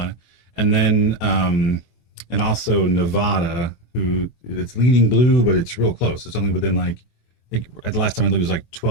and then and also Nevada, who it's leaning blue, but it's real close. It's only within like I think at the last time I looked, it was like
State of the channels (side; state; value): right; late; 24 ms